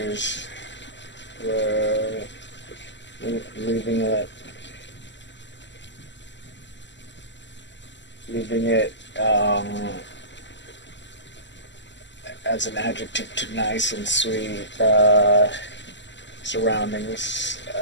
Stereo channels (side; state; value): right; late; 0.53 ms